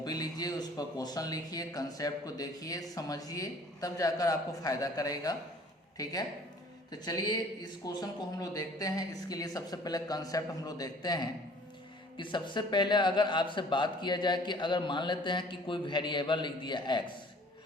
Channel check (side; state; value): both; normal; correlation 0.52